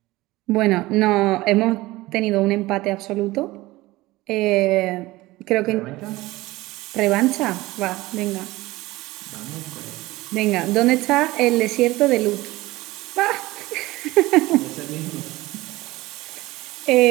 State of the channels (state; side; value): quieter; left; 19.2 dB